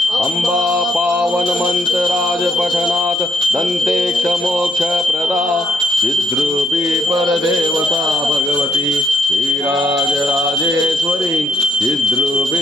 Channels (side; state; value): both; normal; correlation 0.72